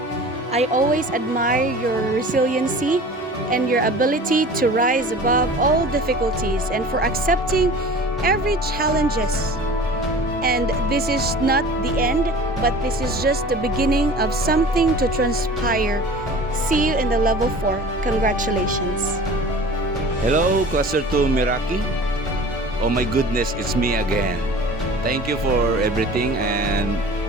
I always admire your resiliency and your ability to rise above all difficulties and for accepting every challenges. And this is not the end, but this is just the beginning of something to transpire. See you in the level 4. Congratulations. Hello, Cluster 2 Meraki. Oh my goodness, it's me again. Thank you for everything and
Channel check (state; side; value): normal; both; correlation 0.42